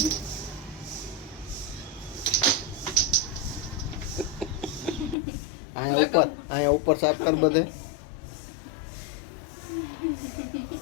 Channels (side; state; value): right; drops out; at 5.2 s